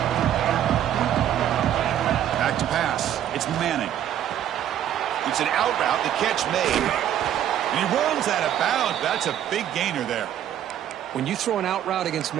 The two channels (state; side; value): quieter; left; 10.8 dB